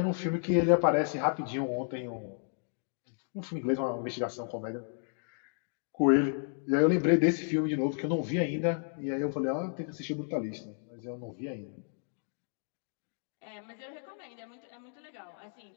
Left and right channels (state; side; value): silent; right; 56 dB below the other